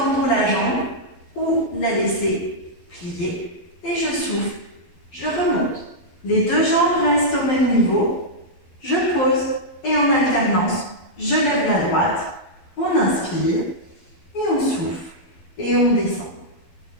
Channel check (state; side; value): late; right; 12 ms